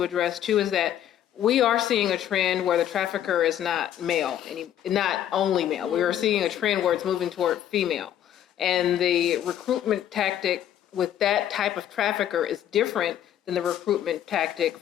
address too is that we are seeing a trend where the trafficker is not male, not only male. We are seeing a trend where it's moving toward female. And the recruitment tactic with that type of trafficker is different than the recruitment tactic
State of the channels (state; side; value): quieter; right; 10.9 dB